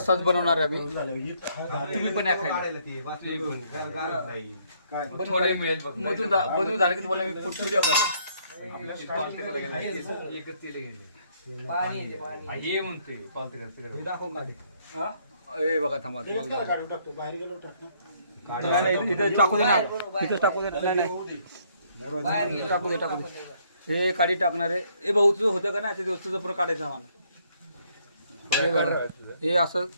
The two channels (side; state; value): both; inverted; correlation -0.67